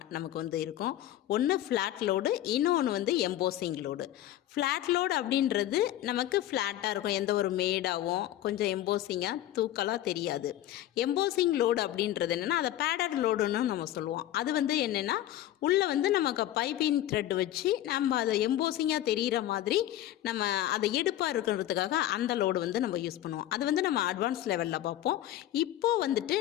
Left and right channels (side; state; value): right; quieter; 13.3 dB